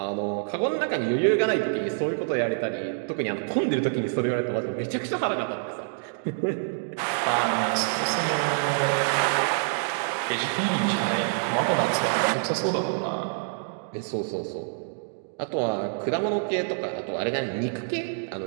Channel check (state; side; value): silent; left; digital silence